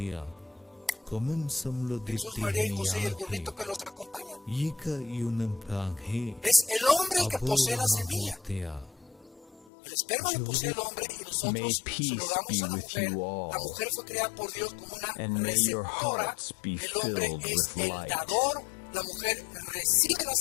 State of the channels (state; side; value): drops out; right; at 9.7 s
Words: Jesús, María y José y el burrito que los acompañan. Es el hombre el que posee la semilla. El esperma lo posee el hombre y nosotros se lo damos a la mujer. La mujer fue creada por Dios como una receptora. El hombre es el dador. La mujer recibe la